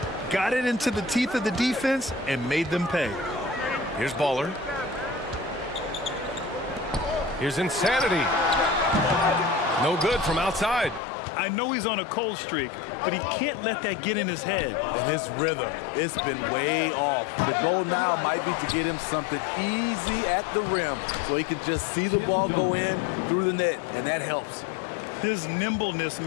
Got it into the teeth of the defense and made them pay. Here's Baller. Here's Insanity. No good from outside. I know he's on a cold streak, but he can't let that get in his head. And his rhythm, it's been way off. The goal now might be to get him something easy at the rim so he can just see the ball go in through the net, and that helps. His nimbleness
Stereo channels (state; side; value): drops out; right; at 11.0 s